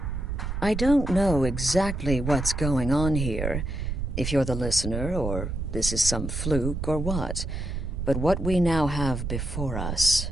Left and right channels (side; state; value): right; noise; rumble, 4 dB below the sound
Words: I don't know exactly what's going on here, if you're the listener, or this is some fluke, or what. But what we now have before us...